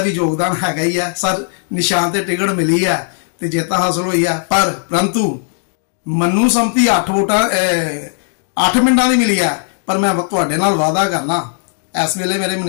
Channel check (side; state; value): right; silent; 67 dB below the other